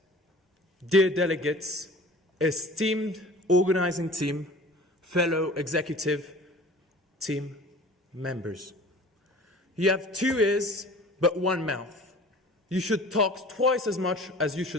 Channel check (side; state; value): both; normal; correlation 0.44